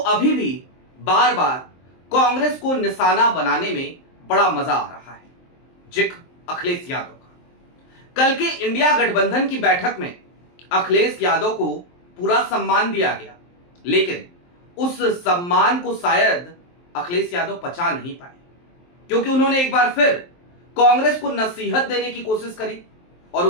अभी भी बार बार कांग्रेस को निशाना बनाने में बड़ा मजा आ रहा है। जिक्र अखिलेश यादव का। कल के इंडिया गठबंधन की बैठक में अखिलेश यादव को पूरा सम्मान दिया गया, लेकिन उस सम्मान को शायद अखिलेश यादव पचा नहीं पाए, क्योंकि उन्होंने एक बार फिर कांग्रेस को नसीहत देने की कोशिश करी और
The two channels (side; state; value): right; late; 23 ms